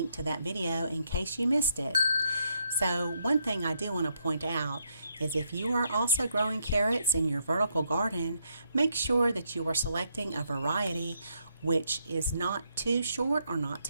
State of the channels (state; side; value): inverted; both; correlation -0.76